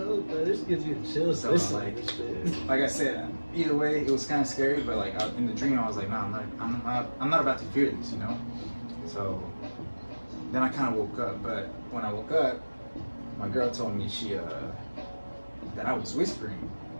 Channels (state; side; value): inverted; both; correlation -1.00